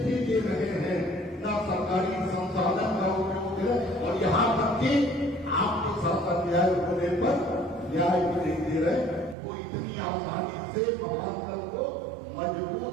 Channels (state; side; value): drops out; left; at 9.3 s